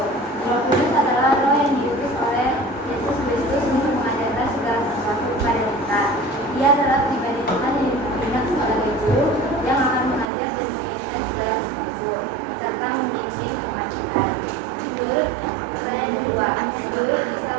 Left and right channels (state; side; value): drops out; left; at 10.2 s